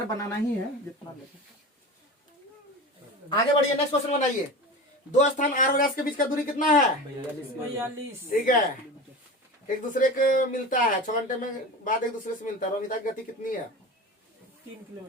बनाना ही है जितना लगे। आगे बढ़िए, नेक्स्ट क्वेश्चन बनाइए। दो स्थान आर और एस के बीच का दूरी कितना है? 42। ठीक है, एक दूसरे को मिलता है 6 घंटे में बाद एक दूसरे से मिलता है। रोमिता की गति कितनी है? 3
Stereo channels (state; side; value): normal; both; correlation 0.30